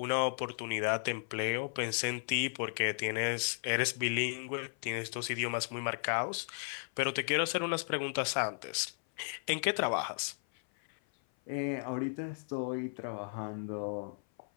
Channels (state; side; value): silent; right; 54 dB below the other